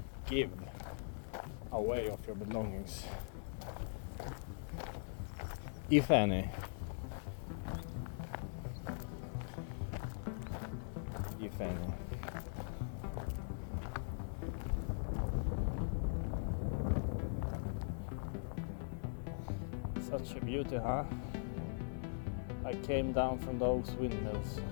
give away of your belongings, if any? If any. Such a beauty, huh? I came down from those windmills,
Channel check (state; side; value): silent; right; 50 dB below the other